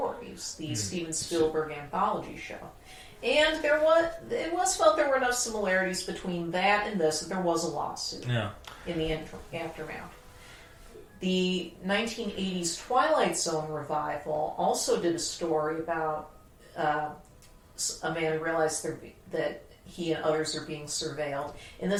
the Steven Spielberg anthology show. And it was felt there were enough similarities between that and this that there was a lawsuit in the aftermath. The 1980s Twilight Zone revival also did a story about a man who realized that he and others are being surveilled. In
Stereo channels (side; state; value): both; identical; correlation 1.00